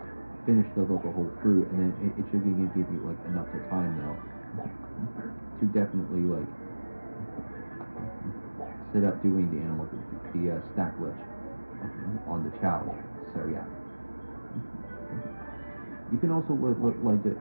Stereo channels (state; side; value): inverted; both; correlation -1.00